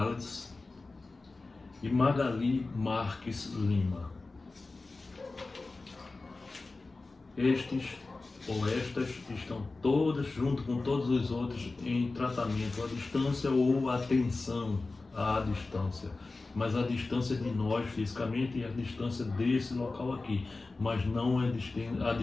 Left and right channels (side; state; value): right; quieter; 3.5 dB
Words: e Magali Marques Lima. Estes ou estas estão todas, junto com todos os outros, em tratamento à distância ou atenção à distância. Mas a distância de nós fisicamente e a distância desse local aqui, mas não a